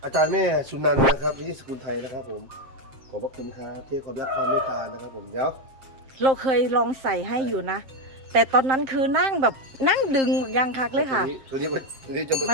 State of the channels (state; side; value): late; left; 7.5 ms